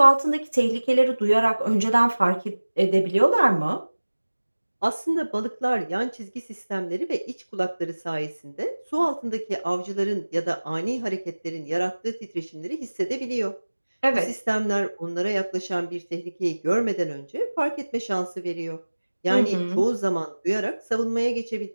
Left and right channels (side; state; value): both; inverted; correlation -1.00